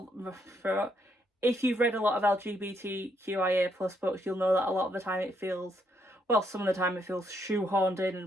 a lot of LGBTQIA plus books, you'll know that a lot of the time it feels, well, some of the time it feels shoehorned in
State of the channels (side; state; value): both; normal; correlation 0.74